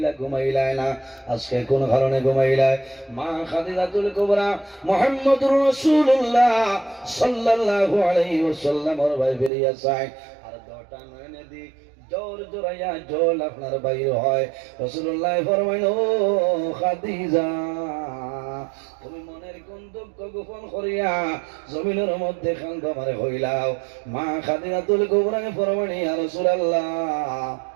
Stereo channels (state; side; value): drops out; left; at 9.5 s